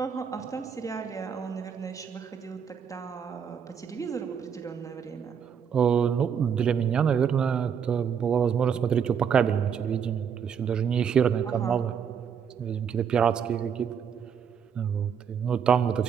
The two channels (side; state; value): left; quieter; 7.5 dB